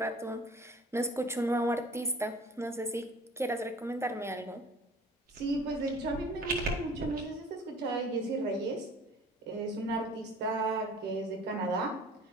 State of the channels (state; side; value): normal; both; correlation 0.47